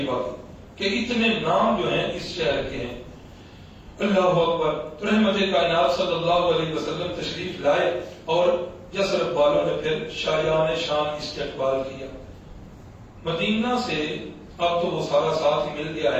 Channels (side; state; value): both; identical; correlation 1.00